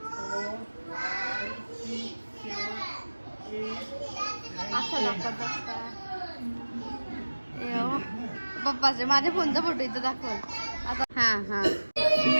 असं दाखवत असता पप्पाचे, माझ्या फोनचा फोटो इथं दाखव आता. हा हा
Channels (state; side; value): inverted; both; correlation -1.00